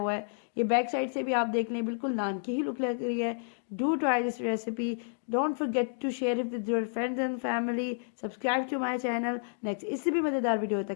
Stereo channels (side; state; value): right; silent; digital silence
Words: है। ये बैक साइड से भी आप देख लें, बिल्कुल नान की ही लुक लग रही है। Do try this recipe, don't forget to share it with your friends and family, subscribe to my channel. Next इससे भी मज़ेदार वीडियो